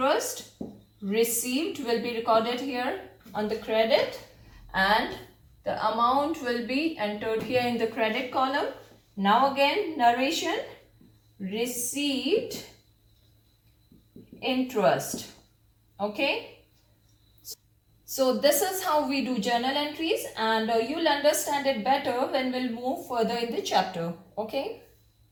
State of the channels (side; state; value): both; identical; correlation 1.00